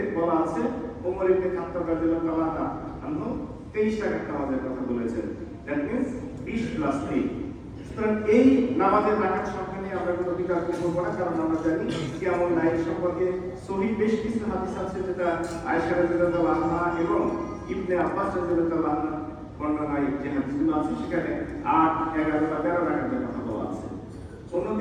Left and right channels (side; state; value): both; identical; correlation 1.00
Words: বলা আছে ওমর ইবনে খাত্তাব রাদিয়াল্লাহু আনহু 23 রাকাত নামাজের কথা বলেছেন। That means 20 + 3। সুতরাং এই নামাজের রাকাত সংখ্যা নিয়ে আমরা কোনো বিতর্ক করব না, কারণ আমরা জানি কিয়ামুল লাইল সম্পর্কে সহিহ বেশ কিছু হাদিস আছে, যেটা আয়েশা রাদিয়াল্লাহু আনহা এবং ইবনে আব্বাস রাদিয়াল্লাহু আনহু বর্ণনায় যে হাদিসগুলো আছে সেখানে 8, 11 বা 13 রাকাতের কথা বলা আছে।